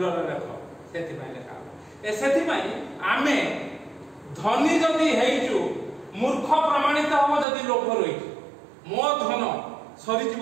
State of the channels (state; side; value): drops out; left; at 7.5 s